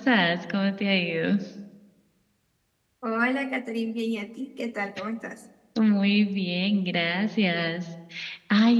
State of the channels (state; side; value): identical; both; correlation 1.00